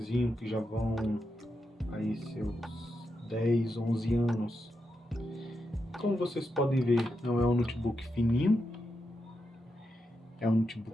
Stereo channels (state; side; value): normal; both; correlation 0.86